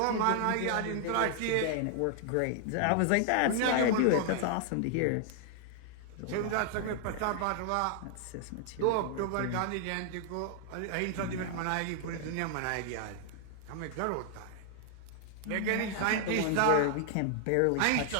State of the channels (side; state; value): both; different; correlation 0.00